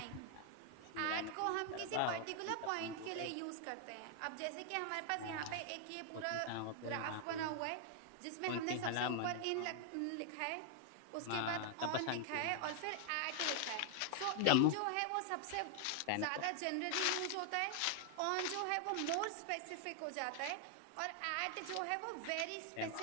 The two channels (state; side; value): different; both; correlation 0.00